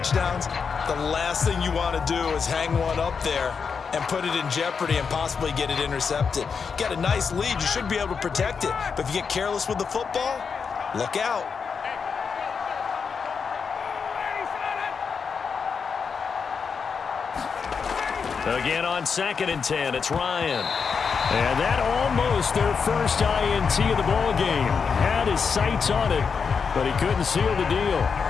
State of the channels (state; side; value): quieter; right; 5.8 dB